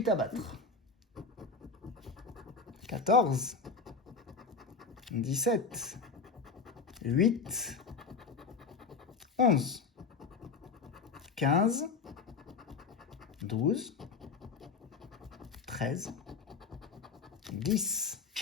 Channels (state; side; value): quieter; right; 4.8 dB